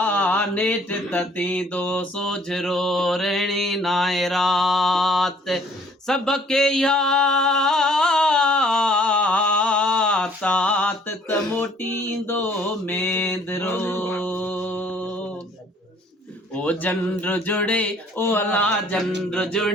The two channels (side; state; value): both; normal; correlation 0.59